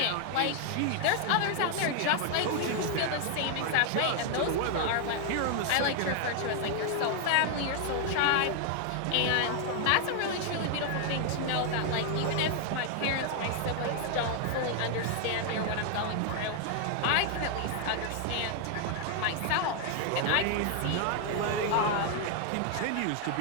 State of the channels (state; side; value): different; both; correlation 0.00